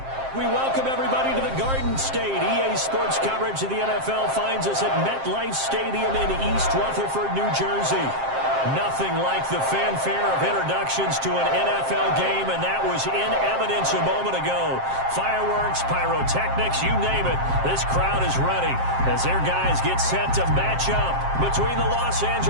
We welcome everybody to the Garden State. EA Sports coverage of the NFL finds us at MetLife Stadium in East Rutherford, New Jersey. Nothing like the fanfare of introductions to an NFL game, and that was in evidence a moment ago. Fireworks, pyrotechnics, you name it. This crowd is ready as their guys get set to match up between the Los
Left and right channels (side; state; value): left; late; 7.6 ms